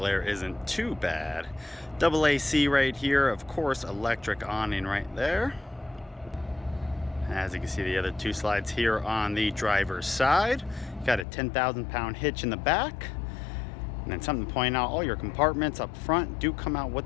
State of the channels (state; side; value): drops out; right; at 11.2 s